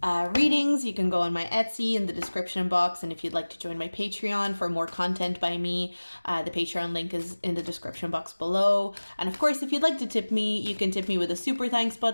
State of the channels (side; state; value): both; inverted; correlation -1.00